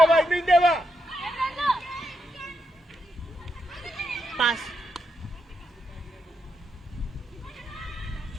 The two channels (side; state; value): both; normal; correlation 0.82